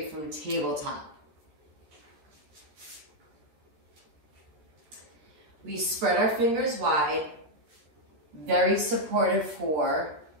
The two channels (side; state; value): left; late; 13 ms